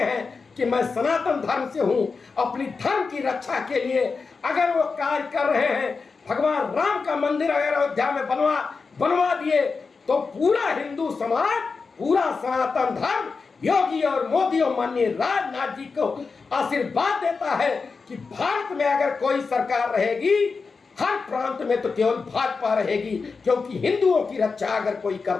कि मैं सनातन धर्म से हूं। अपनी धर्म की रक्षा के लिए अगर वो कार्य कर रहे हैं, भगवान राम का मंदिर अगर अयोध्या में बनवा दिए, तो पूरा हिंदू समाज, पूरा सनातन धर्म योगी और मोदी और माननीय राजनाथ जी को आशीर्वाद देता है कि भारत में अगर कोई सरकार रहेगी, हर प्रांत में तो केवल भाजपा रहेगी, क्योंकि हिंदुओं की रक्षा अगर कोई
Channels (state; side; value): quieter; right; 4.7 dB